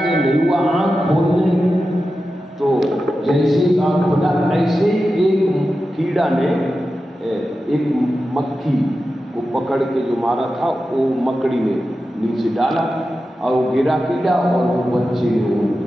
नहीं हुआ, आँख खोलने तो जैसे आँख खोला ऐसे एक कीड़ा ने एक मक्खी को पकड़ के जो मारा था वो मकड़ी ने नीचे डाला और वो गिरा कीड़ा और वो बच्चे ने वो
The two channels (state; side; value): normal; both; correlation 0.92